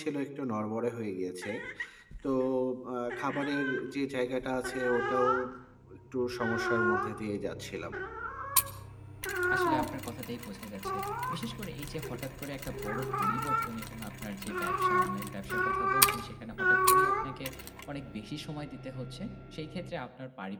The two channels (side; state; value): both; identical; correlation 1.00